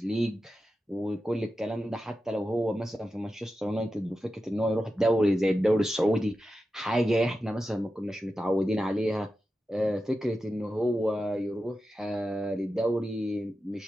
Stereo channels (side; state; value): both; normal; correlation 0.91